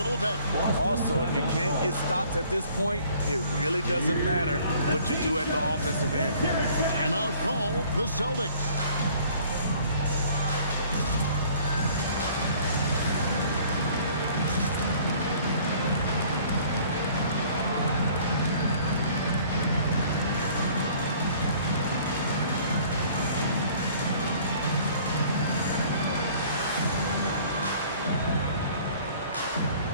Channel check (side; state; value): both; inverted; correlation -0.54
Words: bit. Also, if you can't get stops at this point, it really doesn't matter what you do at the offensive end. Timeout call, the Celtics.